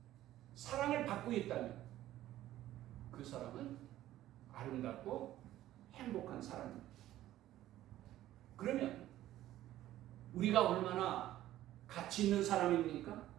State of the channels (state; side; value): quieter; left; 14.0 dB